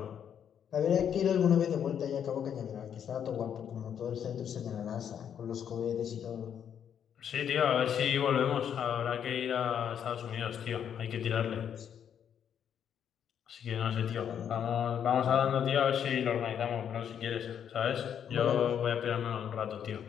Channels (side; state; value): right; quieter; 8.6 dB